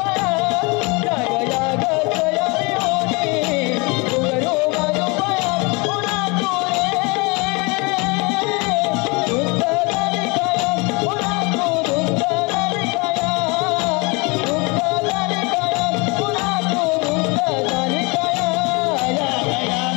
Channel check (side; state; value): right; quieter; 28.3 dB